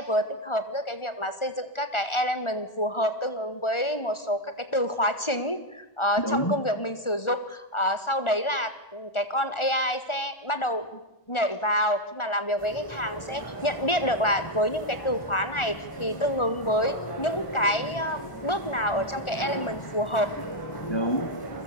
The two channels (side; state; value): right; late; 1.4 ms